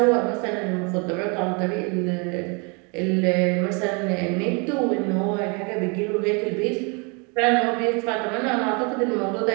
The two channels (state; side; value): quieter; left; 32.5 dB